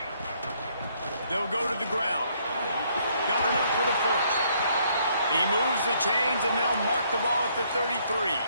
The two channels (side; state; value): both; inverted; correlation -0.68